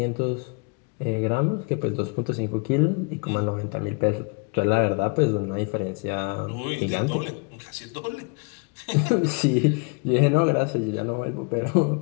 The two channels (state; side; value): quieter; right; 33.4 dB